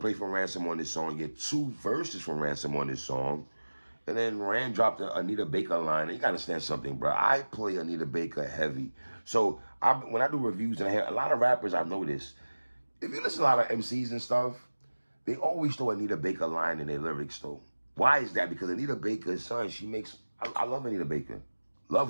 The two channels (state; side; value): inverted; both; correlation -1.00